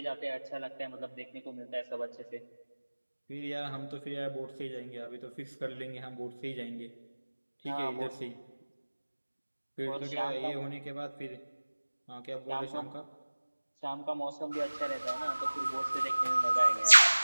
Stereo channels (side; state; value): both; inverted; correlation -1.00